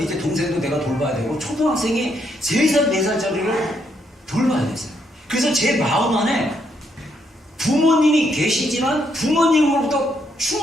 동생도 내가 돌봐야 되고, 초등학생이 3살, 4살짜리를 돌봐야 됐어요. 그래서 제 마음 안에 부모님이 계시지만 부모님으로부터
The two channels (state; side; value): normal; both; correlation 0.75